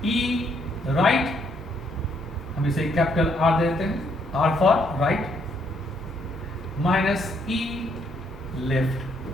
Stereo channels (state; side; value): normal; both; correlation 0.71